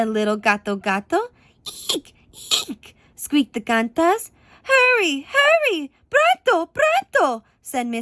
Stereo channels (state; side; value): identical; both; correlation 1.00